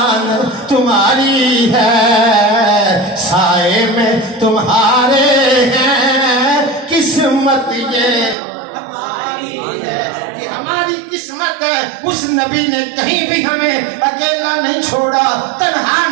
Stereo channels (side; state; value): left; drops out; at 8.3 s